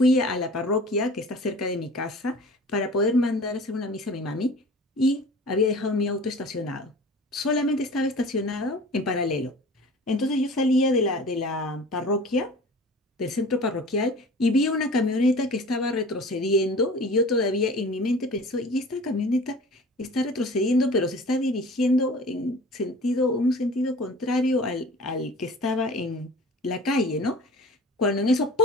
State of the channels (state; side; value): normal; both; correlation 0.42